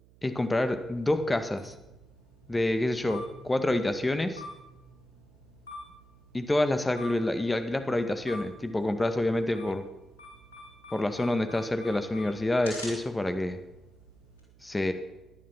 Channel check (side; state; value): right; noise; hum, 27 dB below the sound